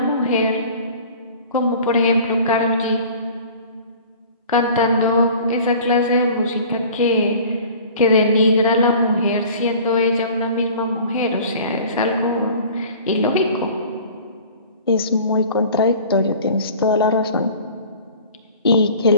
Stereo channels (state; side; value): inverted; both; correlation -0.45